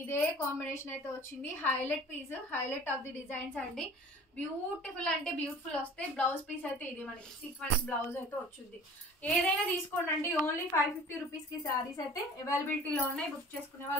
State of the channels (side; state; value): both; normal; correlation 0.44